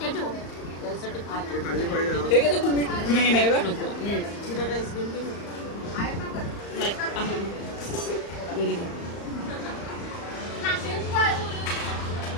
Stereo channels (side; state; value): right; late; 35 ms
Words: ठेव. त्यासाठी हे घेतो तुम्ही. नाही नाही नको. जिरा राईस घेऊन घे. नाही व्हेरी गुड.